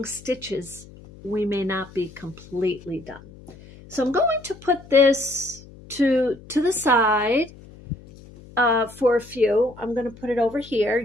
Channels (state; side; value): noise; left; hum, 20 dB below the sound